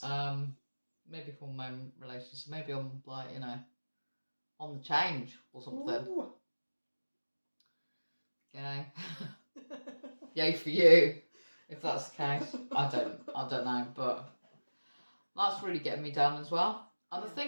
Maybe hormone related. So maybe I'm like, on the change or something. Ooh. Yay for you, if that's the case. I don't know, but that's really getting me down as well. And I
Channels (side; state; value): both; inverted; correlation -1.00